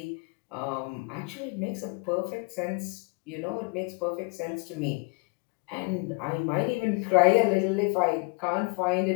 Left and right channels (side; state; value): right; quieter; 31.0 dB